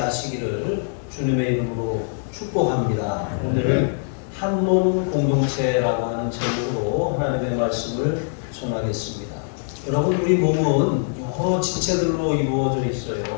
주님의 이름으로 축복합니다. 오늘은 한 몸 공동체라고 하는 제목으로 하나님의 말씀을 전하겠습니다. 여러분, 우리 몸은 여러 지체들로 이루어져 있어요.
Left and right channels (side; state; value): right; silent; digital silence